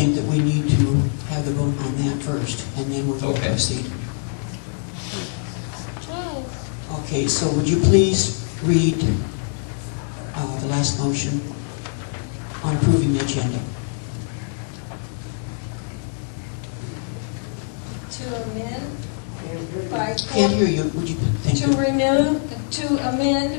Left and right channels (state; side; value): silent; right; digital silence